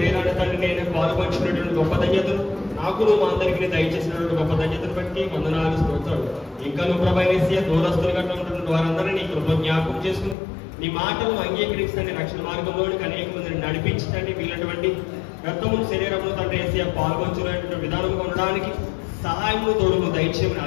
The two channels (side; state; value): right; drops out; at 10.4 s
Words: తండ్రి నేను పాల్పంచినటువంటి గొప్ప ధన్యతను నాకును మా అందరికీ దయచేసినటువంటి గొప్ప ధన్యతను బట్టి వందనాలు, స్తోత్రాలు. ఇంకా నువ్వు ప్రభా ఏసయ్య దూరస్తులుగా ఉన్నటువంటి వారందరినీ నీ కృప జ్ఞాపకం చేసుకుని నీ మాటలను అంగీకరిస్తండి, రక్షణ మార్గంలోనికి అనేక మందిని నడిపించండి. వీళ్ళటువంటి రక్తమును శరీరమును తండ్రి ఏసయ్య పాల్గొంచుకునేటువంటి విధానంగా ఉండడానికి సహాయమును తోడును దయచేయమని